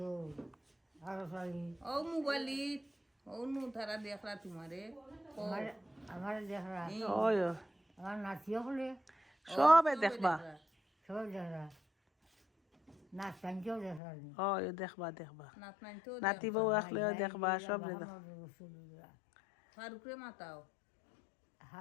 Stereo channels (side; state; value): right; drops out; at 14.0 s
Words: আরো শাড়ি ও মোবাইলিত ও নু তারা দেখলা তোমারে ও আমার আমার দেখরা ওই আমার নাতিও হলে সবে দেখবা সব দেখরা নাচ টানকেও দেখরানি ওই দেখবা দেখবা নাত নাই তো নাতি বউ আসলেও দেখবা সব দেখবা ফারুকরে মাতাও